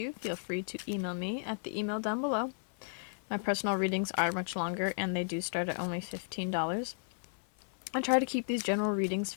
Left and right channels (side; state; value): right; silent; 55 dB below the other